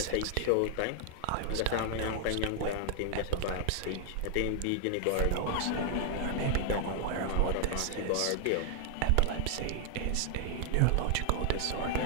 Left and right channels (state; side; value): different; both; correlation 0.00